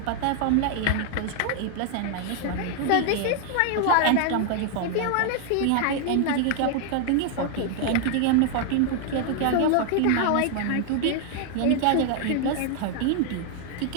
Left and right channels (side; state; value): both; different; correlation 0.00